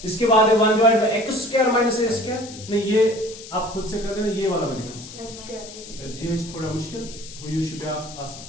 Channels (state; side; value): noise; left; hiss, 15 dB below the sound